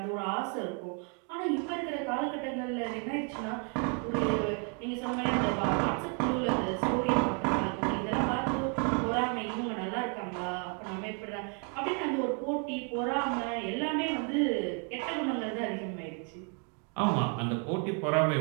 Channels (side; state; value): left; quieter; 39.1 dB